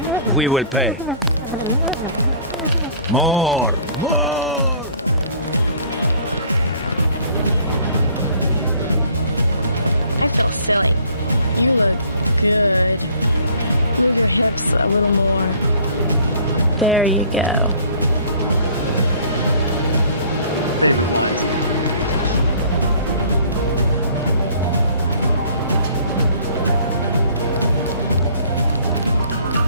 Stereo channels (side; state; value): both; inverted; correlation -0.54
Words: feel silly. You look good. Move your hips a little more. Favorite lines.